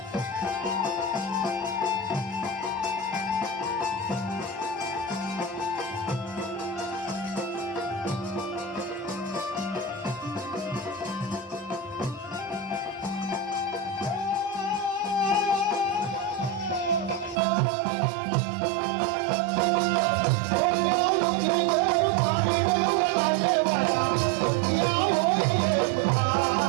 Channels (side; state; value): left; drops out; at 17.4 s